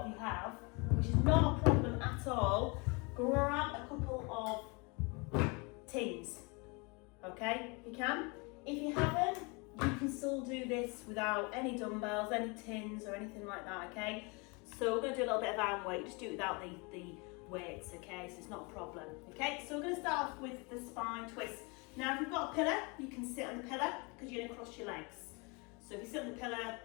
of you have, which is not a problem at all, grab a couple of tins, okay, if you can. If you haven't, you can still do this without any dumbbells, any tins or anything like that, okay? So we're going to do a little bit of arm weight, just do it without the weights, okay, so it's not a problem, okay? So we're going to start off with the spine twist. Now if you've got a pillar, you can sit on the pillar because you're going to cross your legs. So if you sit on the pillar,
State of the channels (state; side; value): quieter; right; 29.7 dB